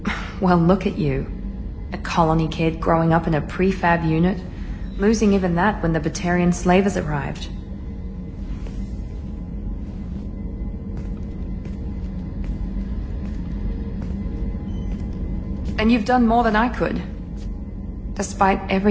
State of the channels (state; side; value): identical; both; correlation 1.00